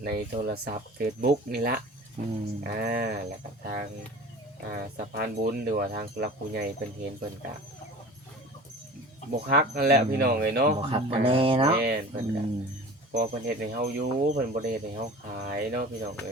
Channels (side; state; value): both; normal; correlation 0.39